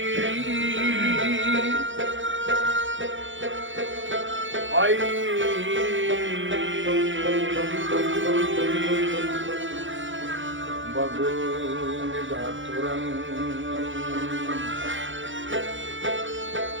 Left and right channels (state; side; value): late; left; 0.56 ms